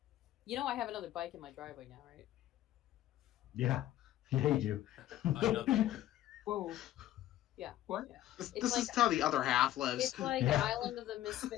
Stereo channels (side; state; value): right; quieter; 13.6 dB